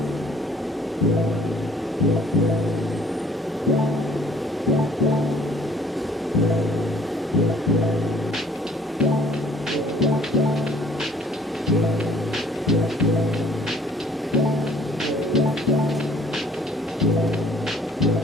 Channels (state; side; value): normal; both; correlation 0.57